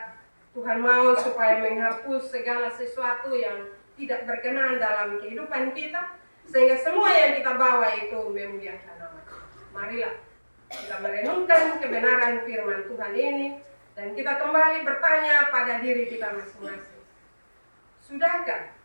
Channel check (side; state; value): both; inverted; correlation -1.00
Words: Tuhan mau supaya menghapus segala sesuatu yang tidak berkenan dalam kehidupan kita, sehingga semua yang kita bawa itu memuliakan nama Tuhan. Marilah kita merenungkan kebenaran firman Tuhan ini, dan kita kembali bertanya pada diri kita masing-masing. Sudahkah